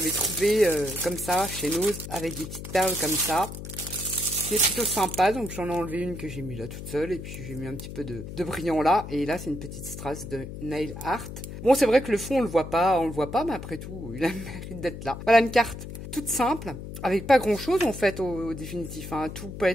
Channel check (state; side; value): noise; left; hum, 10 dB below the sound